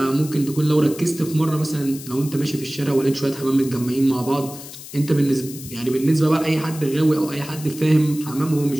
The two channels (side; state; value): left; noise; hiss, 14 dB below the sound